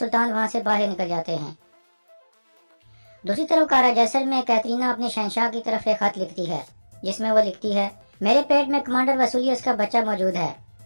वहां से बाहर निकल जाते हैं। दूसरी तरफ कारा जैसर में कैटरीना अपने शहंशाह की तरफ एक खत लिखती है, जिसमें वो लिखती है, मेरे पेट में कमांडर वसूलियस का बच्चा मौजूद है।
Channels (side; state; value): both; inverted; correlation -1.00